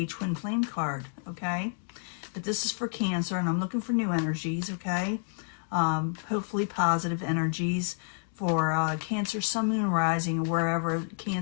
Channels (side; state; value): right; silent; 58 dB below the other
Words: twin flame card, okay? But this is for Cancer, and I'm looking for new energies, okay? Hopefully positive energies for Cancer, Sun, Moon, and Rising, or wherever